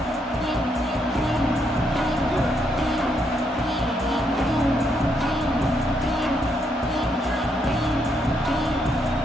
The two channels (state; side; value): normal; both; correlation 0.76